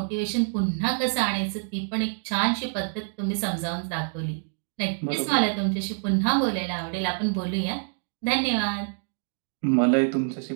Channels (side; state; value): left; silent; 61 dB below the other